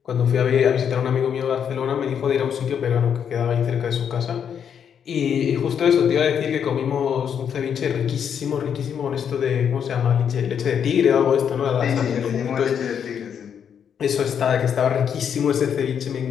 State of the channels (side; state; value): right; quieter; 8.0 dB